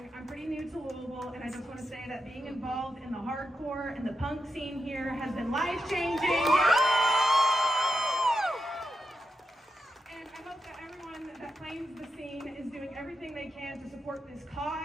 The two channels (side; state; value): both; normal; correlation 0.86